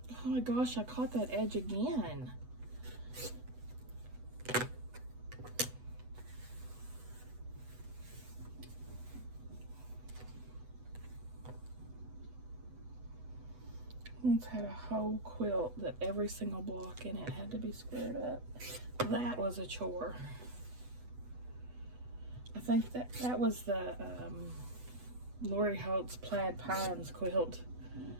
Oh my gosh, I caught that edge again. Once had a whole quilt that every single block in it had to be squared up. That was a chore. I think that was the Lori Holt's Plaid Pines quilt.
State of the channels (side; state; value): left; late; 8.1 ms